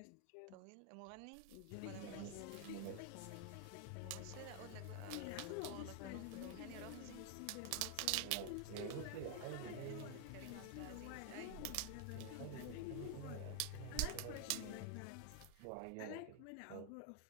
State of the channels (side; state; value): both; different; correlation 0.00